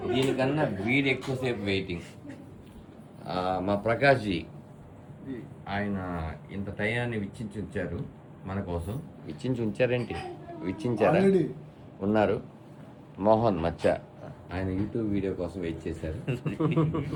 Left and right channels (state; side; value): identical; both; correlation 1.00